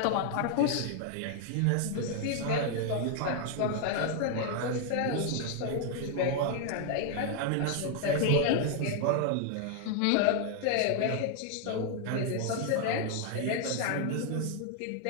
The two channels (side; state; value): both; different; correlation 0.00